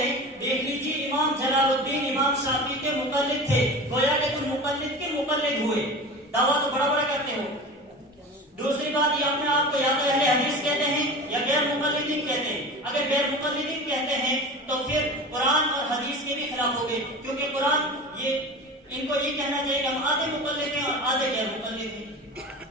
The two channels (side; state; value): both; normal; correlation 0.32